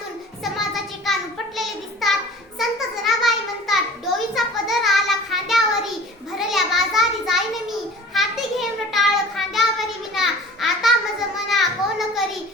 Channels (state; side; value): normal; both; correlation 0.43